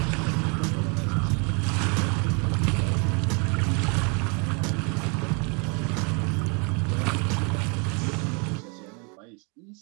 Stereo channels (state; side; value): quieter; left; 34.0 dB